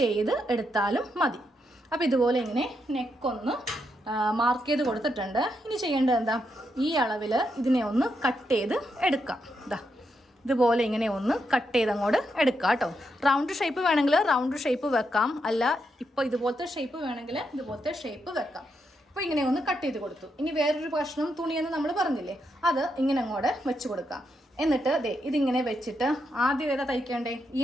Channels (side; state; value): both; normal; correlation 0.81